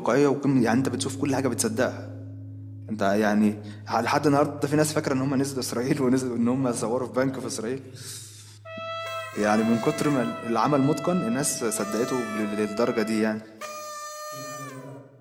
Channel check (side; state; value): both; identical; correlation 1.00